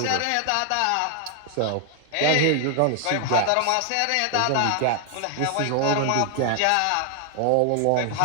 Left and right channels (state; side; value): different; both; correlation 0.00